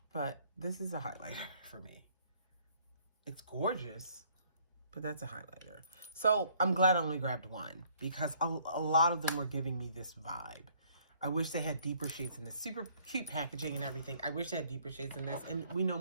but this is a highlighter for me. It's gorgeous, but that's a highlighter. So I'm glad I only grabbed one because a lot of them were giving me this vibe. I wish they had deeper shades in this. Super cute packaging and everything. I wish they had deeper shades in this. And we know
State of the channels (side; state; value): both; inverted; correlation -0.62